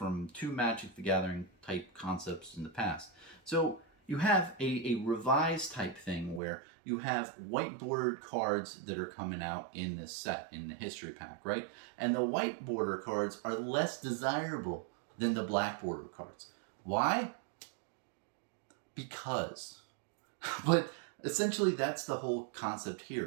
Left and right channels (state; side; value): drops out; left; at 6.4 s